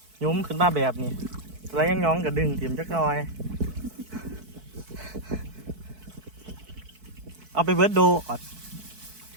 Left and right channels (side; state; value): left; late; 4.6 ms